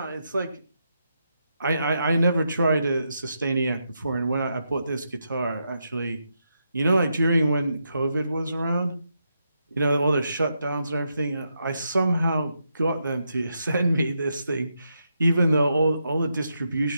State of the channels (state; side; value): inverted; both; correlation -0.83